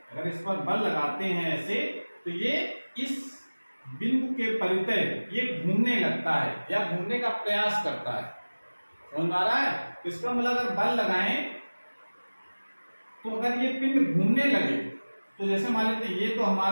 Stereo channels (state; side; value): inverted; both; correlation -1.00